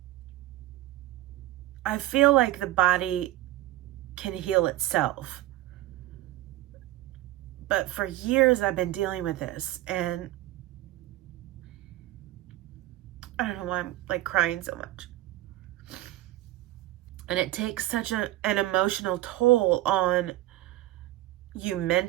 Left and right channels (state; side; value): quieter; left; 16.2 dB